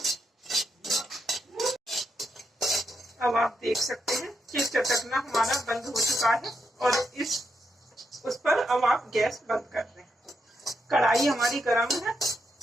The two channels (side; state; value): both; normal; correlation 0.82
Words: अब आप देख सकते हैं कि चटकना हमारा बंद हो चुका है और उस पर अब आप गैस बंद कर दें। कढ़ाई हमारी गर्म है।